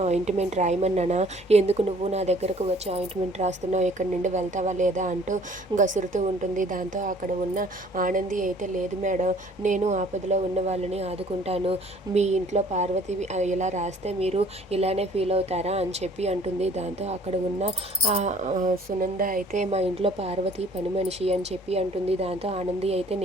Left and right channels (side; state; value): both; normal; correlation 0.55